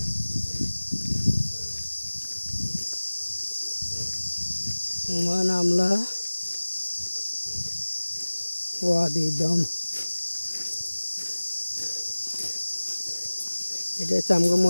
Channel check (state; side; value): inverted; both; correlation -1.00